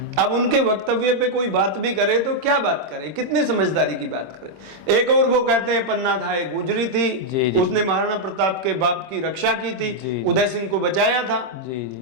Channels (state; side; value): late; left; 26 ms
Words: अब उनके वक्तव्य पे कोई बात भी करे तो क्या बात करे, कितनी समझदारी की बात करे। एक और वो कहते हैं पन्ना धाय गुजरी थी, उसने महाराणा प्रताप के बाप की रक्षा की थी, उदय सिंह को बचाया था।